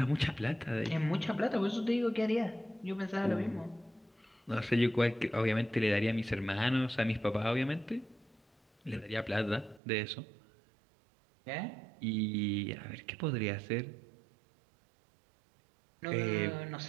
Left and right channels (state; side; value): drops out; left; at 9.8 s